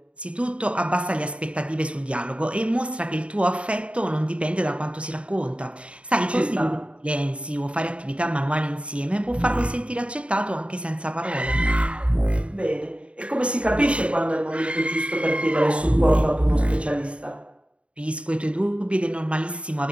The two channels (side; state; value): left; late; 0.060 ms